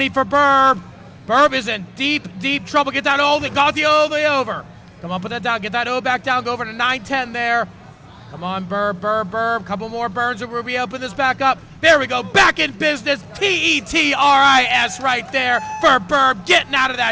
for Burb. Burb is in deep trouble. Get that O, got the over. Come on, put that down. Get that O back down. Go over to 910 there. Come on, Burb. Couple more burns and we'll reopen this back up. There we go. Back in business. Tetris right there for Burb. Getting out of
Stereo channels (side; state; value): both; identical; correlation 1.00